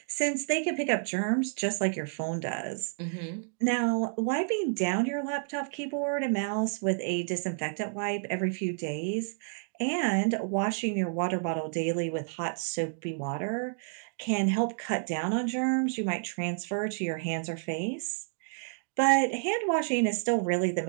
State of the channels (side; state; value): left; silent; digital silence